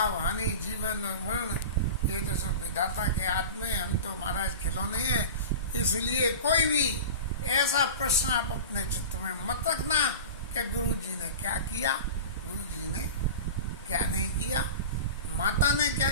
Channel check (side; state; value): both; inverted; correlation -0.31